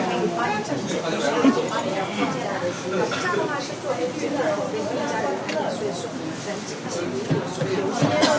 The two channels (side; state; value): both; identical; correlation 1.00